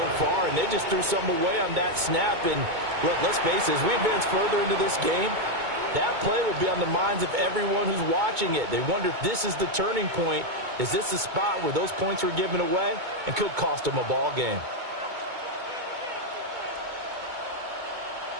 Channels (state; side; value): late; left; 2.2 ms